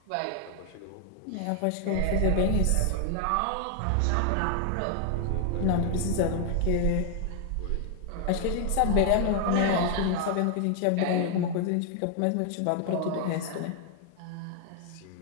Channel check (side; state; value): both; different; correlation 0.00